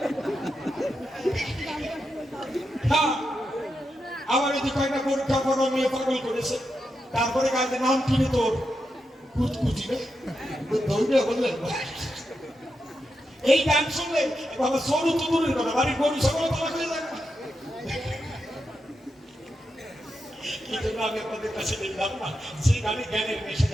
আবার যদি কয়েকটা পরীক্ষা করা মেয়ে পাগল করেছে, তারপরে কাজে নাম কিনে তোর কুচকুচি ধরবে বললেন। এই গান শুনলে বাবা সরু তো দূরের কথা, বাড়ির গরু সকল তালা হয়ে যাবে। এই জন্য আমি আপনাদের কাছে দেখলাম না, যে গানে জ্ঞানের মেশে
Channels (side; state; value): both; normal; correlation 0.86